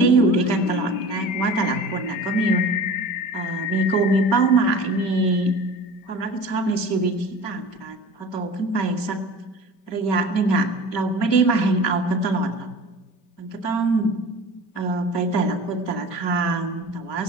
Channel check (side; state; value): right; late; 5.2 ms